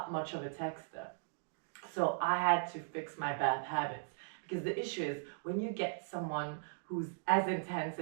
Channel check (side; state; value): left; silent; digital silence